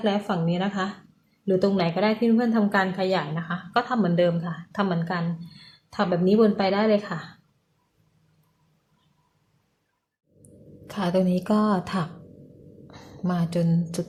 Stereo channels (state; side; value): identical; both; correlation 1.00